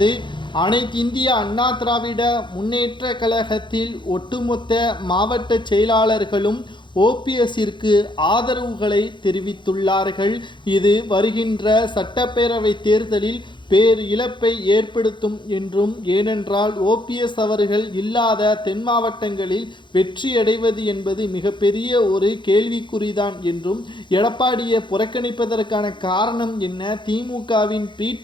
அனைத்து இந்திய அண்ணா திராவிட முன்னேற்ற கழகத்தில் ஒட்டுமொத்த மாவட்ட செயலாளர்களும் ஓபிஎஸ்ஸிற்கு ஆதரவுகளை தெரிவித்துள்ளார்கள். இது வருகின்ற சட்டப்பேரவை தேர்தலில் பேர் இழப்பை ஏற்படுத்தும் என்றும், ஏனென்றால் ஓபிஎஸ் அவர்கள் இல்லாத தென் மாவட்டங்களில் வெற்றியடைவது என்பது மிகப்பெரிய ஒரு கேள்விக்குறிதான் என்றும், எடப்பாடியை புறக்கணிப்பதற்கான காரணம் என்ன, திமுகவின் பி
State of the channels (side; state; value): right; late; 0.23 ms